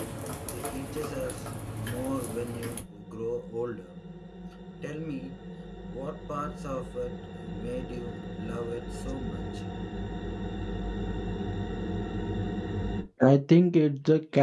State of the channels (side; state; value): both; identical; correlation 1.00